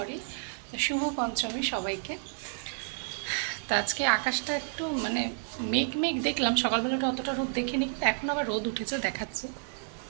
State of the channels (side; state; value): left; silent; digital silence